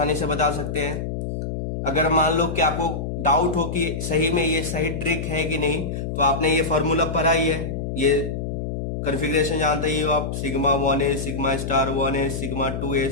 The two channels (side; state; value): left; noise; hum, 4 dB below the sound